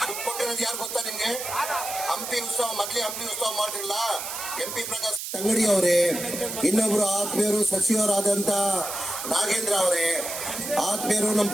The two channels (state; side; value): noise; right; hiss, 6 dB below the sound